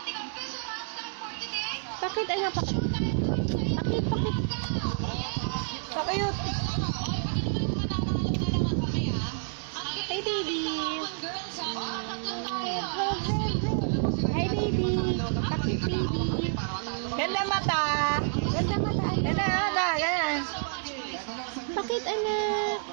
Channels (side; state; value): left; silent; digital silence